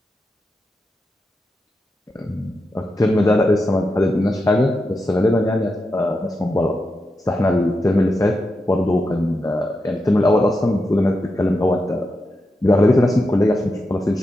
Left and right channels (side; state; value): both; normal; correlation 0.88